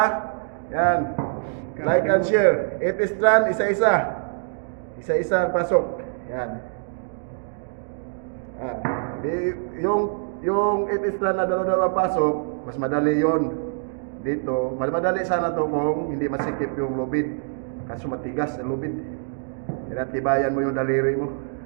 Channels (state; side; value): silent; left; digital silence